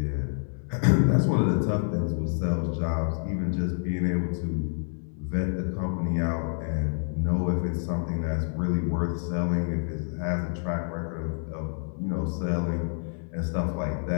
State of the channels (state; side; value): silent; right; digital silence